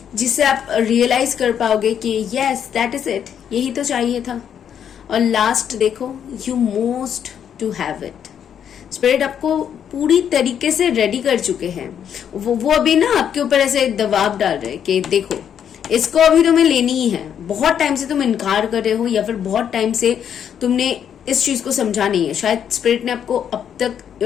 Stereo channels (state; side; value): quieter; right; 8.7 dB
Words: आप रियलाइज कर पाओगे कि यस दैट इज इट, यही तो चाहिए था। और लास्ट देखो, you most to have it. Spirit आपको पूरी तरीके से रेडी कर चुके हैं। वो अभी ना आपके ऊपर ऐसे दबाव डाल रहे हैं कि देखो इसको अभी तुम्हें लेनी ही है। बहुत टाइम से तुम इनकार कर रहे हो या फिर बहुत टाइम से तुमने इस चीज को समझा नहीं है। शायद स्पिरिट ने आपको अब तक